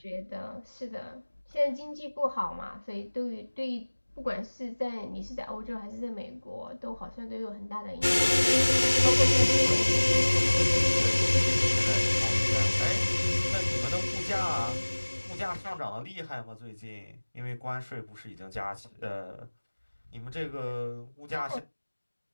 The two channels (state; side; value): inverted; both; correlation -1.00